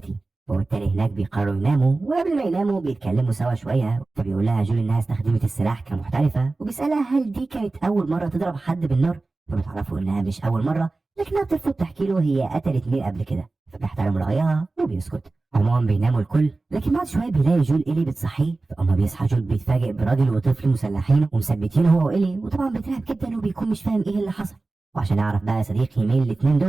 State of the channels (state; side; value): quieter; left; 3.4 dB